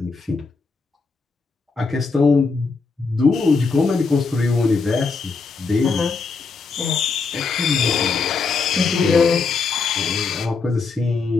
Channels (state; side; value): quieter; right; 4.6 dB